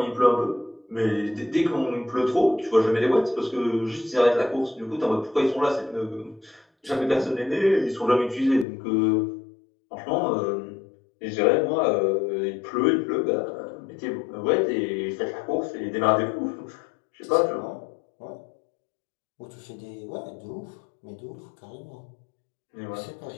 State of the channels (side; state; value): right; drops out; at 8.7 s